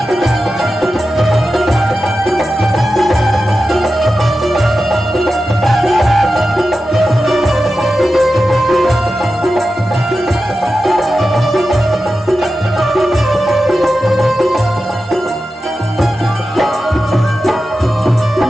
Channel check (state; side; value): normal; both; correlation 0.92